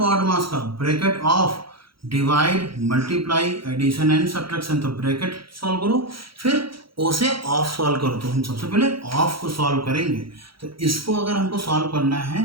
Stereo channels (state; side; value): late; left; 0.75 ms